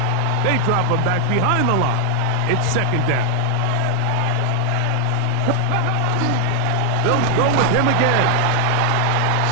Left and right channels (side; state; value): both; different; correlation 0.00